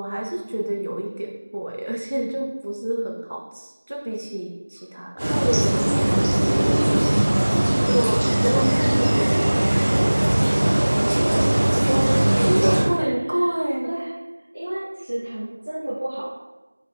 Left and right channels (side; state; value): both; inverted; correlation -1.00